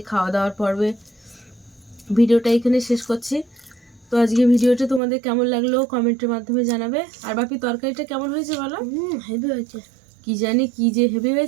খাওয়া দাওয়ার পর্বে ভিডিওটা এখানে শেষ করছি। তো আজকে ভিডিওটা তোমাদের কেমন লাগলো কমেন্টের মাধ্যমে জানাবে। আর বাপি তরকারিটা কেমন হয়েছে বলো? হেভি হয়েছে। কি জানি কি যে হেভি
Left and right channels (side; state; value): left; drops out; at 5.0 s